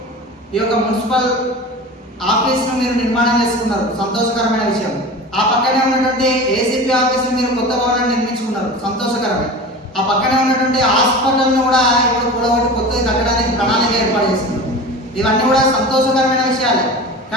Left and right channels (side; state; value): both; normal; correlation 0.33